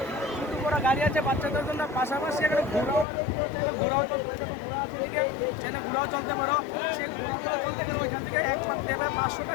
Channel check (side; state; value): right; drops out; at 3.1 s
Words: ছোটো বড় গাড়ি আছে বাচ্চাদের জন্য, পাশাপাশি এখানে ঘোরাও চলতে ঘোরাও চলতে পারো। সেই ঘোরাও চলতে গেলে ওইখান থেকে এক পাক দেবে 500